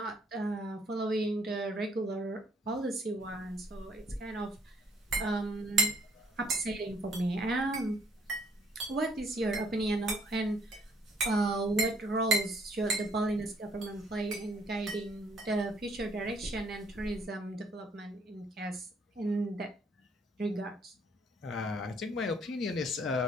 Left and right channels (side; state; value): both; normal; correlation 0.64